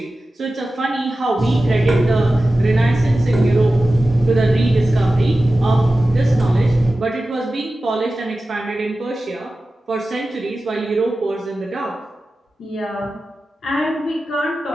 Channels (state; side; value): normal; both; correlation 0.94